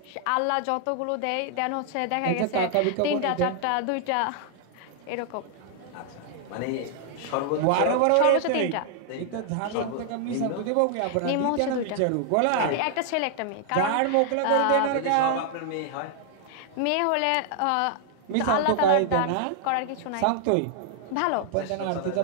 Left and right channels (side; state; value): both; different; correlation 0.00